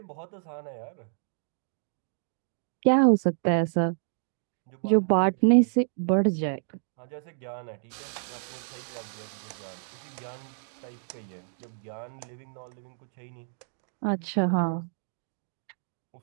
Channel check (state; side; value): silent; left; digital silence